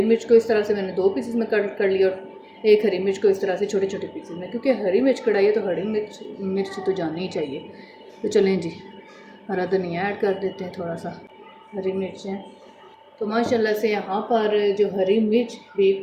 मिर्च को इस तरह से मैंने 2 पीसेस में कट कर लिया, और एक हरी मिर्च को इस तरह से छोटे छोटे पीसेस में, क्योंकि हरी मिर्च कढ़ाई है तो हरी मिर्च तो जानी ही चाहिए। तो चलें जी, हरा धनिया ऐड कर देते हैं, थोड़ा सा हरी मिर्चें। तो माशाल्लाह से यहाँ पर जो हरी मिर्च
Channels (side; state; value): both; identical; correlation 1.00